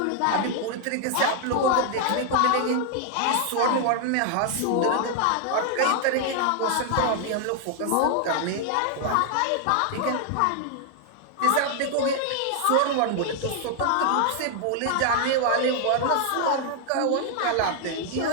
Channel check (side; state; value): both; different; correlation 0.00